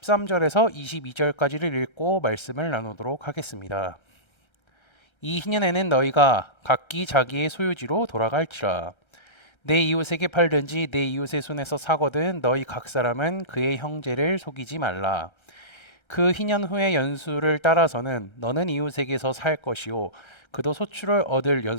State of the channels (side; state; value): right; late; 1.3 ms